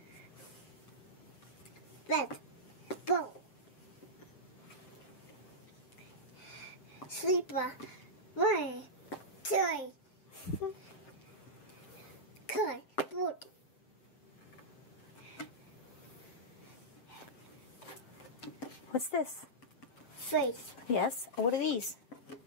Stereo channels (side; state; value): right; late; 8.1 ms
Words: Bed. Bowl. Sleeper. Wine. Toy. Toy. Food. What's this? Face. Yes. What are these?